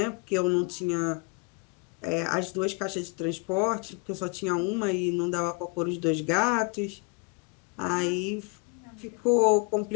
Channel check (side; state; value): right; quieter; 30.4 dB